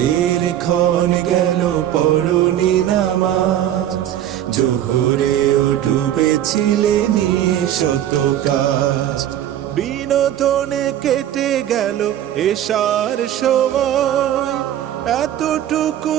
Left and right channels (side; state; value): left; quieter; 11.5 dB